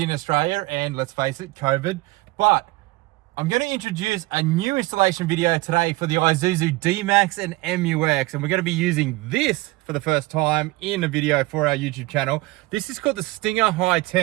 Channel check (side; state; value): left; quieter; 21.2 dB